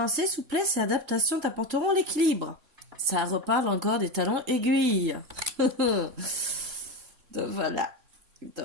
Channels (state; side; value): late; left; 3.9 ms